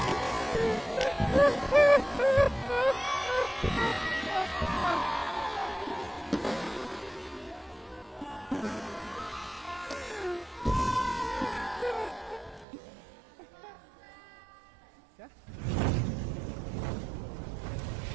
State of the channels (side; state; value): left; drops out; at 12.7 s